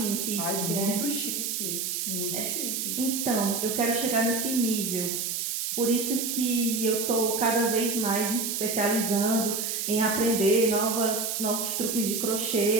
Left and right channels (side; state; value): right; noise; hiss, 2 dB below the sound